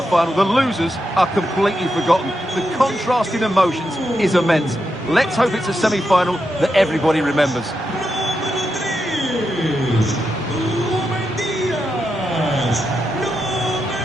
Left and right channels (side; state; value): both; normal; correlation 0.86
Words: final. The losers are completely forgotten. The contrast in emotions is immense. Let's hope it's a semi-final that everybody remembers.